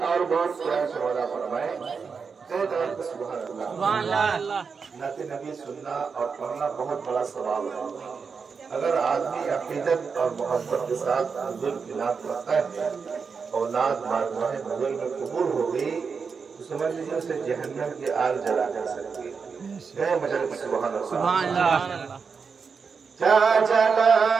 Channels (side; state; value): left; quieter; 5.5 dB